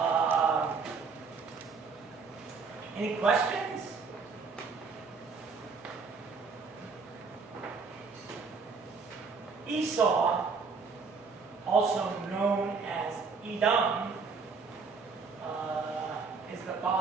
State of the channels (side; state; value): left; quieter; 4.9 dB